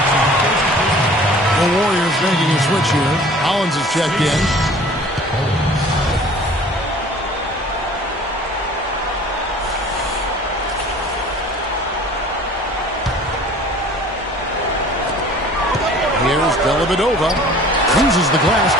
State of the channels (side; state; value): both; normal; correlation 0.48